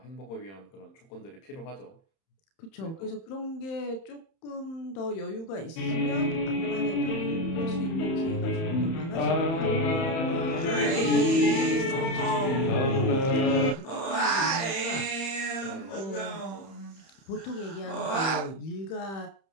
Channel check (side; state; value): right; late; 31 ms